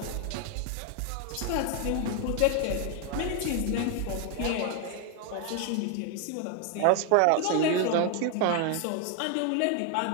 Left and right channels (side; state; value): both; different; correlation 0.00